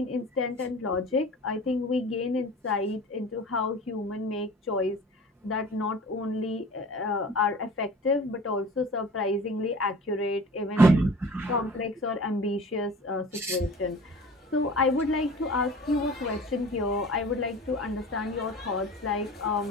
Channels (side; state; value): both; normal; correlation 0.41